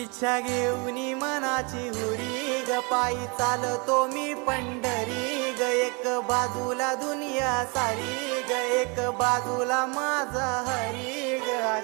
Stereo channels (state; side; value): quieter; left; 31.0 dB